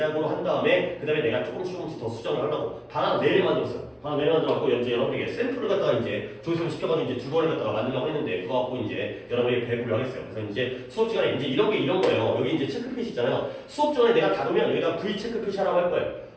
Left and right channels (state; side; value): identical; both; correlation 1.00